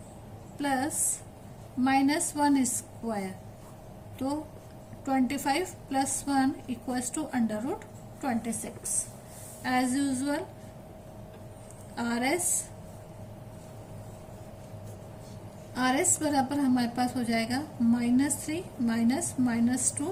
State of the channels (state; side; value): identical; both; correlation 1.00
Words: प्लस -1 स्क्वायर, तो 25 plus 1 equals to under root 26। As usual R S बराबर हमारे पास हो जाएगा -3 -2